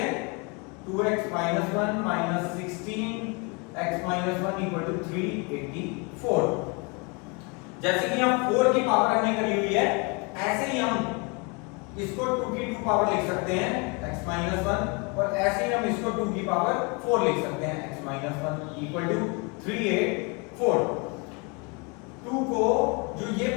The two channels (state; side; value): quieter; right; 30.4 dB